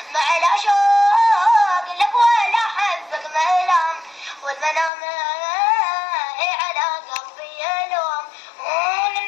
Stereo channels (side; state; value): right; drops out; at 4.9 s